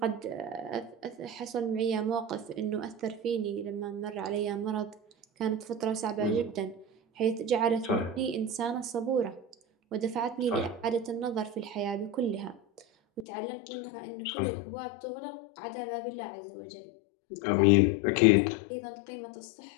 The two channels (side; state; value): right; drops out; at 13.2 s